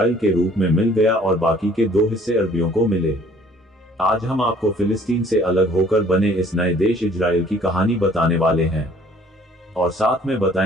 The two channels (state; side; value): normal; both; correlation 0.57